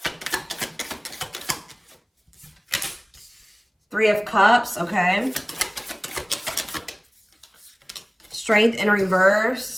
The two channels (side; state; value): both; identical; correlation 1.00